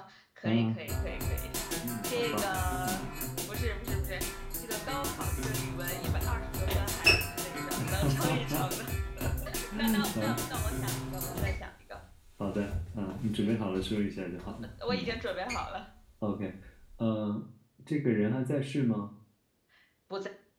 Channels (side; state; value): both; identical; correlation 1.00